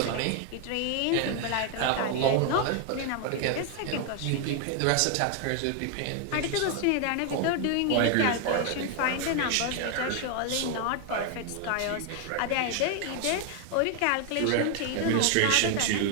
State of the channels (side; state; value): both; different; correlation 0.00